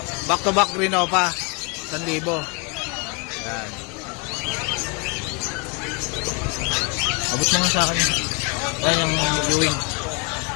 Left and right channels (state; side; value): quieter; right; 31.4 dB